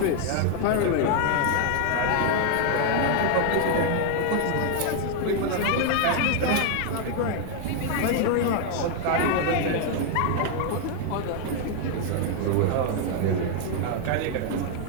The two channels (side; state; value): both; different; correlation 0.00